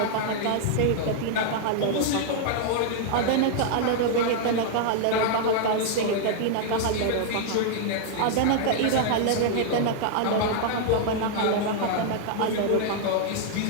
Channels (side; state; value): both; different; correlation 0.00